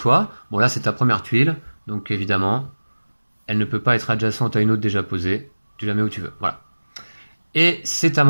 Bon, là, c'est ta première tuile, donc évidemment... elle ne peut pas être adjacente à une autre déjà posée. Tu la mets où tu veux. Voilà. Et c'est à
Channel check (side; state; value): both; inverted; correlation -1.00